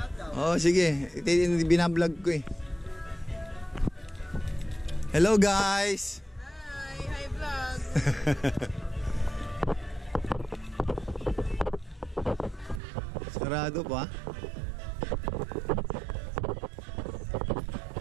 Oo, sige. Binablog ko eh. Hello guys! Hi! Hi vlog! Sarado pa.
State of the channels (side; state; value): left; drops out; at 12.8 s